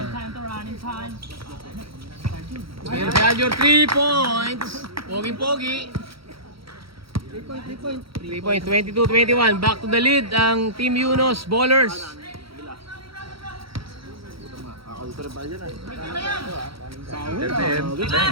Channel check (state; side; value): late; left; 0.75 ms